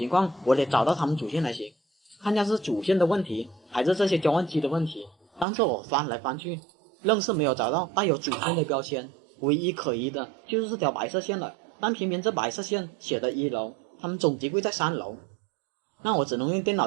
况我得找到他们主线才行，看下是主线的问题还是这些交换机的问题。但是我翻来翻去，愣是没有找到带有主线的标签，唯一可疑的就是这条白色线了。但偏偏这白色线写的1楼，他们总机柜在3楼，那我只能用电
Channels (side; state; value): left; drops out; at 5.5 s